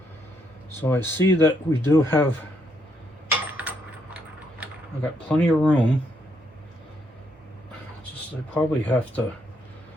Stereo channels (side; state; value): both; normal; correlation 0.75